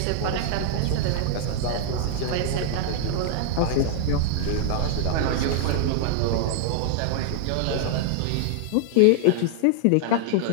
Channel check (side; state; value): both; different; correlation -0.01